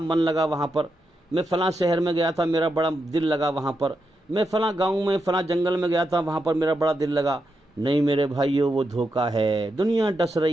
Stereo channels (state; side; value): normal; both; correlation 0.85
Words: लगा वहाँ पर, मैं फलां शहर में गया था, मेरा बड़ा दिल लगा वहाँ पर, मैं फलां गांव में फलां जंगल में गया था, वहाँ पर मेरा बड़ा दिल लगा। नहीं मेरे भाइयों, वो धोखा है। दुनिया डस